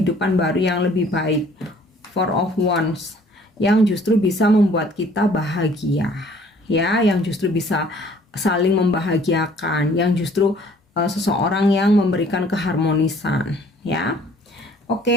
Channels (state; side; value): normal; both; correlation 0.56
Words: baru yang lebih baik. Four of Wands, yang justru bisa membuat kita bahagia ya, yang justru bisa saling membahagiakan, yang justru seseorang yang memberikan keharmonisan ya.